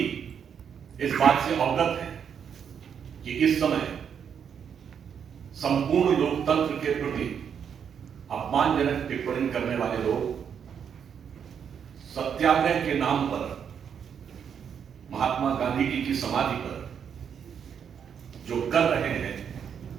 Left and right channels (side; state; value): left; quieter; 7.7 dB